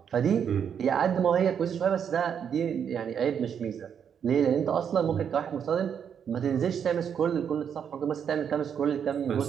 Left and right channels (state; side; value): quieter; left; 7.9 dB